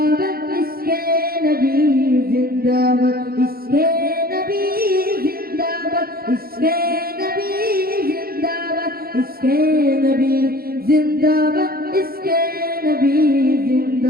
ইশকে নবী জিন্দাবাদ, ইশকে নবী জিন্দাবাদ, ইশকে নবী জিন্দাবাদ, ইশকে নবী জিন্দাবাদ, ইশকে নবী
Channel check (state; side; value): late; left; 0.44 ms